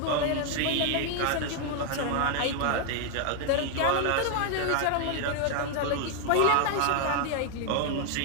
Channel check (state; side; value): different; both; correlation 0.00